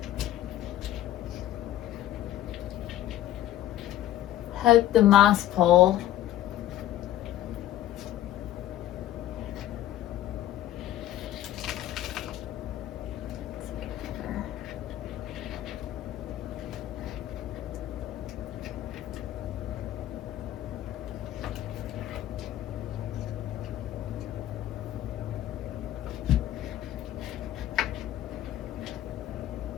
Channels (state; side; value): quieter; right; 13.1 dB